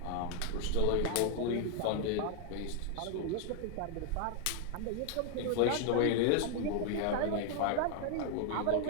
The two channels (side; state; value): both; different; correlation 0.01